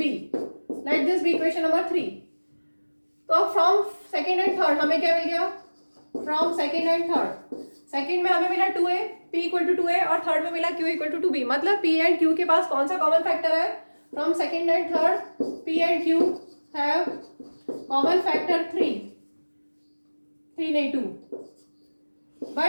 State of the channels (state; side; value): inverted; both; correlation -1.00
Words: Late this be equation number 3. तो फ्रॉम सेकेंड एंड थर्ड हमें क्या मिल गया? From second and third, second में हमें मिला 2a, p equal to 2a, और थर्ड में मिला q इक्वल टू 2b. मतलब p एंड q के पास कौन सा कॉमन फैक्टर है? From second and third p and q have common factor 3 नहीं 2,